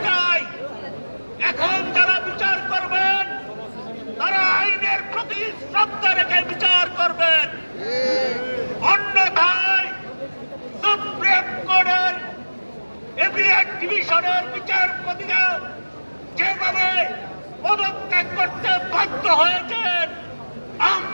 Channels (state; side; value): inverted; both; correlation -1.00